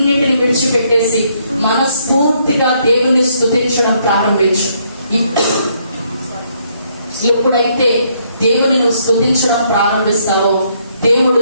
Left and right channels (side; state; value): both; inverted; correlation -0.71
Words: విడిచిపెట్టేసి మనస్ఫూర్తిగా దేవుని స్తుతించడం ప్రారంభించు. ఎప్పుడైతే దేవుని నువ్వు స్తుతించడం ప్రారంభిస్తావో దేవుడు